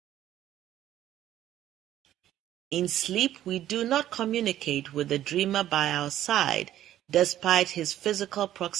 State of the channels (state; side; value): quieter; left; 12.5 dB